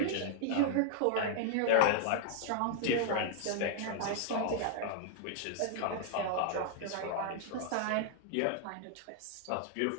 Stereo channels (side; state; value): both; different; correlation 0.00